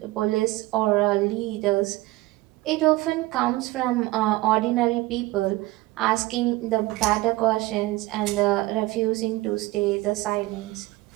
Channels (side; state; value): left; quieter; 19.1 dB